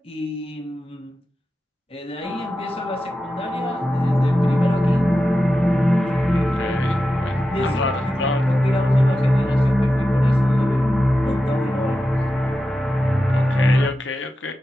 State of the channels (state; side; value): normal; both; correlation 0.91